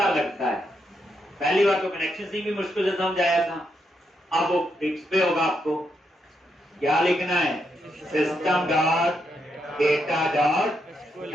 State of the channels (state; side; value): normal; both; correlation 0.80